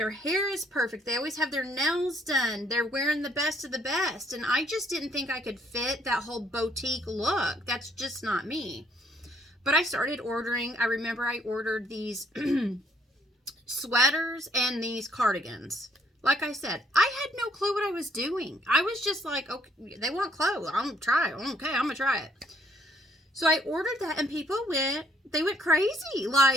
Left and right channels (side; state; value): both; normal; correlation 0.66